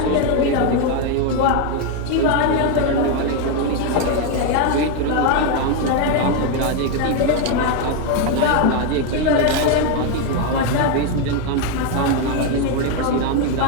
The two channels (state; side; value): different; both; correlation 0.01